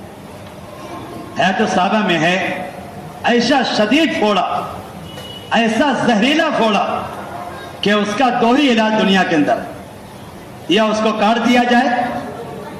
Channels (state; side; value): identical; both; correlation 1.00